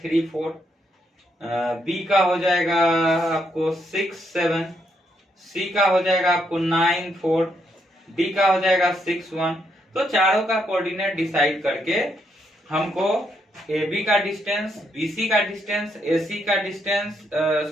4, बी का हो जाएगा आपको 6 7, सी का हो जाएगा आपको 9 4, डी का हो जाएगा 6 1। तो चारों का कोऑर्डिनेट डिसाइड करके हमको ए बी का डिस्टेंस, बी सी का डिस्टेंस, ए सी का डिस्टेंस,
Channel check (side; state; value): both; normal; correlation 0.77